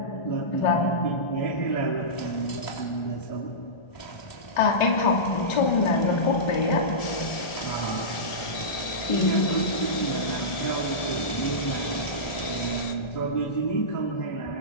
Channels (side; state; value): right; late; 1.7 ms